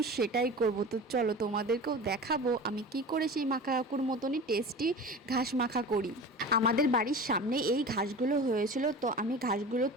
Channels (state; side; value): normal; both; correlation 0.34